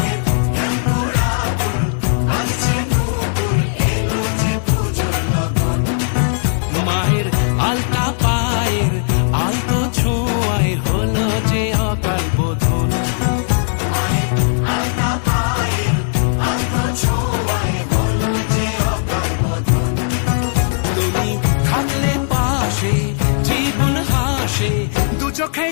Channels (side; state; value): right; silent; digital silence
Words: মায়ের আলতা পায়ের আলতো ছোঁয়ায় হলো যে অকাল বোধন। তুমি থাকলে পাশে জীবন হাসে, দু চোখে